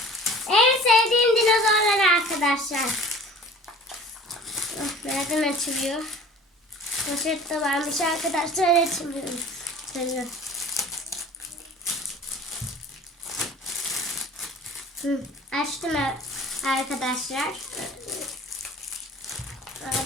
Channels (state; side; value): normal; both; correlation 0.45